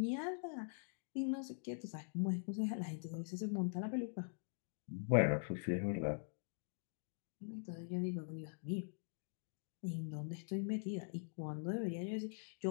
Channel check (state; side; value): silent; right; digital silence